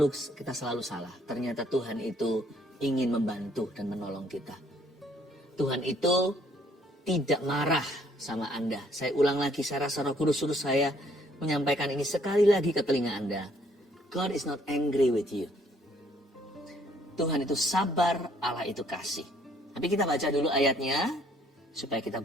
salah. Ternyata Tuhan itu ingin membantu dan menolong kita. Tuhan itu tidak marah sama Anda. Saya ulang lagi, saya rasa Roh Kudus suruh saya menyampaikan ini sekali lagi ke telinga Anda. God is not angry with you. Tuhan itu sabar, Allah itu kasih. Tapi kita baca dulu ayatnya, supaya kita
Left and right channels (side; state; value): both; normal; correlation 0.64